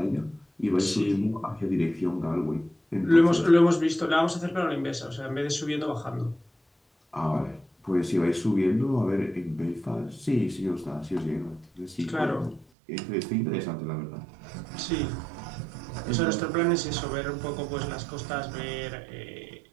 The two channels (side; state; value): left; drops out; at 12.7 s